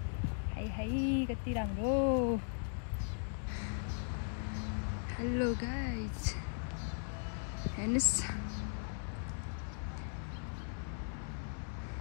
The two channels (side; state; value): right; silent; digital silence